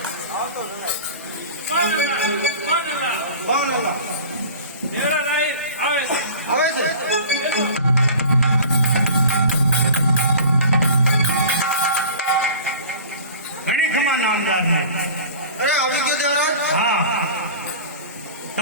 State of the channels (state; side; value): inverted; both; correlation -0.40